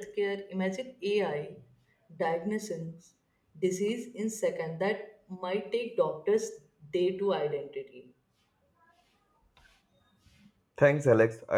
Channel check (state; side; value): identical; both; correlation 1.00